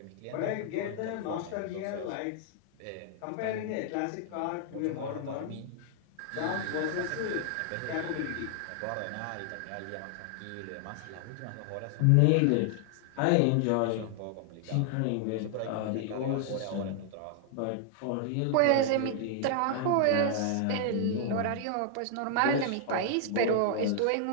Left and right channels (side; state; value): both; different; correlation 0.00